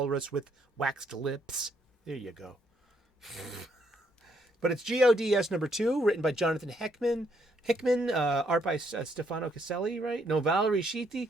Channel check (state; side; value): normal; both; correlation 0.72